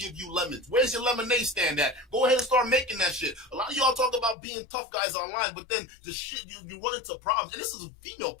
you lemons. Where's your lemonade stand at? Go ahead and start making that shit. A lot of y'all talk about being tough guys online, but then the shit, you run into problems. And this is a female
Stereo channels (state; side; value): drops out; right; at 4.4 s